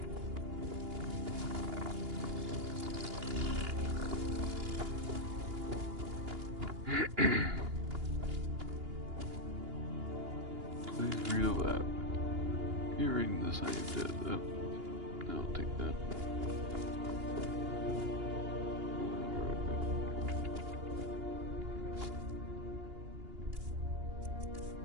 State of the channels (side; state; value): left; late; 2.8 ms